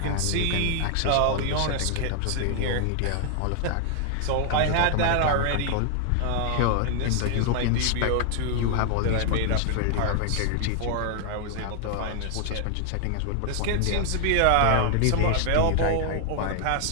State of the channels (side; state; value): both; different; correlation 0.00